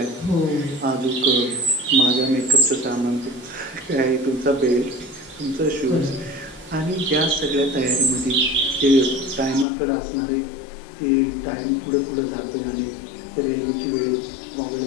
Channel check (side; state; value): right; drops out; at 9.7 s